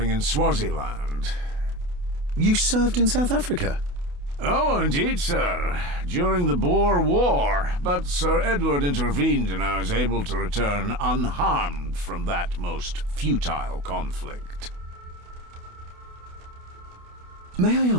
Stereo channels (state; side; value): late; left; 28 ms